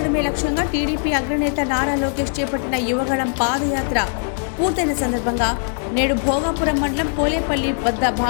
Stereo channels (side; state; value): right; silent; 60 dB below the other